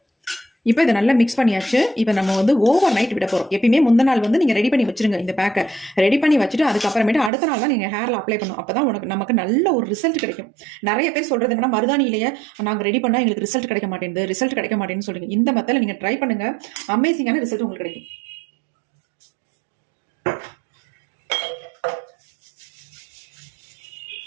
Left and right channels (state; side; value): drops out; left; at 7.3 s